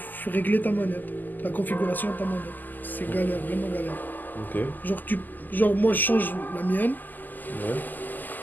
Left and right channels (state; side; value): late; right; 0.086 ms